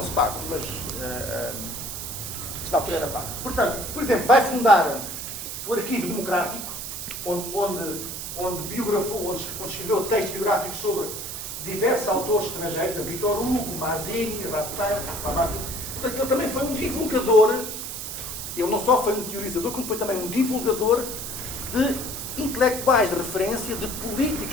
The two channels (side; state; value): right; noise; hiss, 6 dB below the sound